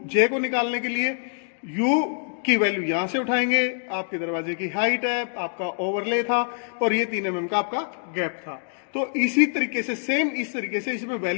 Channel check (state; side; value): silent; right; digital silence